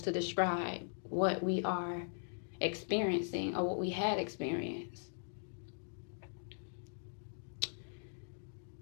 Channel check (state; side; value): silent; right; digital silence